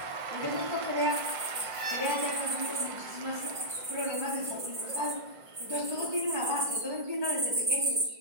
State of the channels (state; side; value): late; left; 1.5 ms